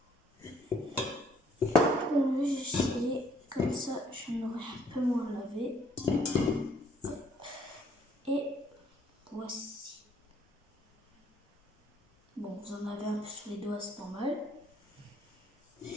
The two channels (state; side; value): normal; both; correlation 0.64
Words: J'ai essayé, comme ça je n'aurai un peu moins lavé. Hop. Et voici. Bon, vous en avez un peu sur les doigts, c'est normal. Je